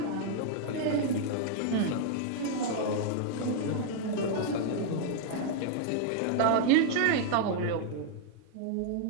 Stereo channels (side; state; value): both; different; correlation 0.00